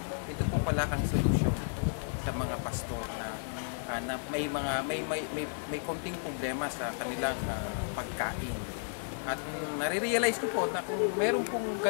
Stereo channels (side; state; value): right; silent; digital silence